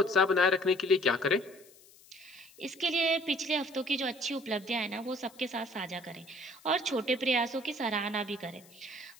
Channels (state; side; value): noise; left; hiss, 25 dB below the sound